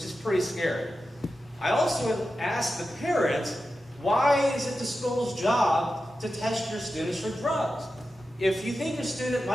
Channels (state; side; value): normal; both; correlation 0.91